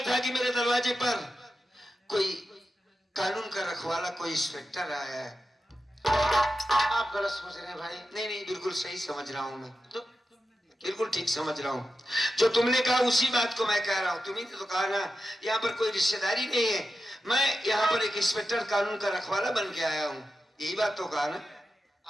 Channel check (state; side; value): normal; both; correlation 0.91